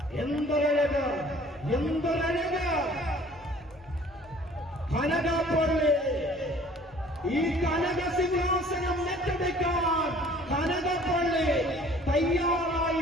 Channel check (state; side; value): normal; both; correlation 0.52